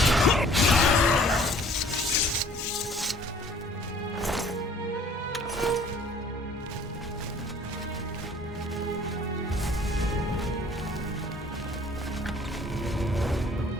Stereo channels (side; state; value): both; normal; correlation 0.54